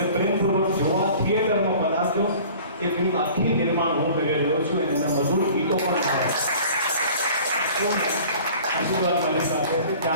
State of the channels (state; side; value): inverted; both; correlation -0.46